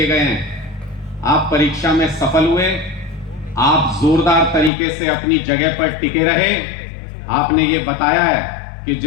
गए हैं, आप परीक्षा में सफल हुए। आप जोरदार तरीके से अपनी जगह पर टिके रहे। आपने ये बताया है कि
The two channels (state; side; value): drops out; right; at 4.7 s